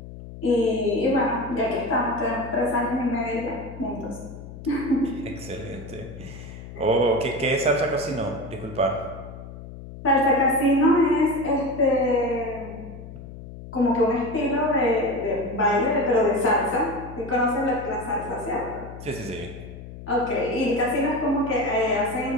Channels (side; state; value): left; noise; hum, 13 dB below the sound